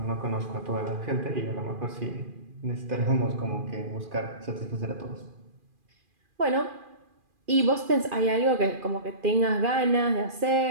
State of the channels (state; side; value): late; left; 2.4 ms